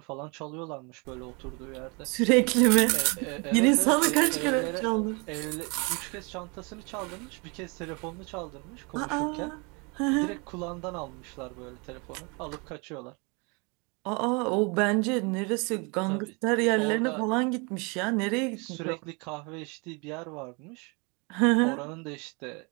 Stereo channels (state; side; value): quieter; left; 30.8 dB